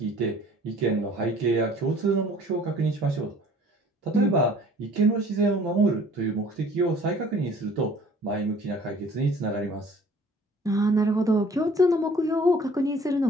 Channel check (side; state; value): both; normal; correlation 0.52